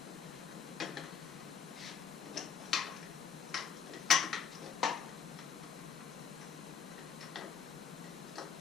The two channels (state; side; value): quieter; right; 7.0 dB